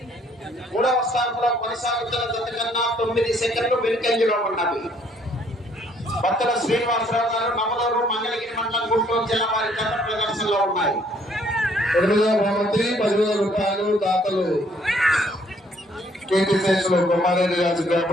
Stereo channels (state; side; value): normal; both; correlation 0.64